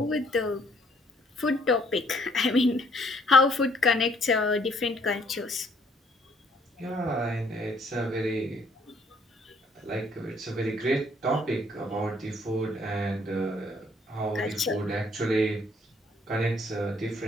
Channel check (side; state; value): both; normal; correlation 0.64